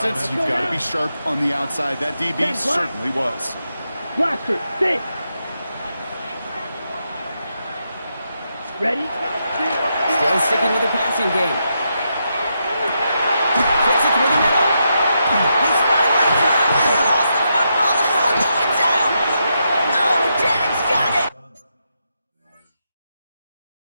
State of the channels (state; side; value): inverted; both; correlation -0.83